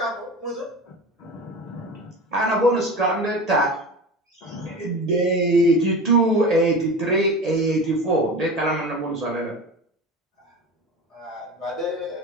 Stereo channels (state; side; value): normal; both; correlation 0.31